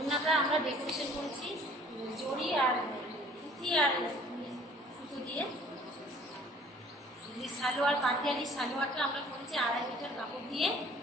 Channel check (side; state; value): both; normal; correlation 0.54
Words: আমরা ডেকোরেশন করেছি জড়ি আর পুঁতি আর সুতো দিয়ে। সালোয়ার পাটিয়ালি সালোয়ারটা আমরা করেছি 2.5 মিটার কাপড় দিয়ে